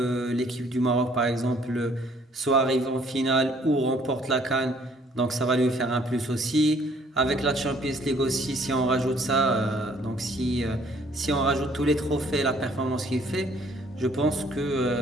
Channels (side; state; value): both; normal; correlation 0.61